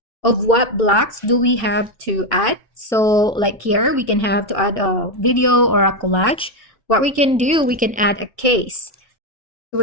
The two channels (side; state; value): both; normal; correlation 0.07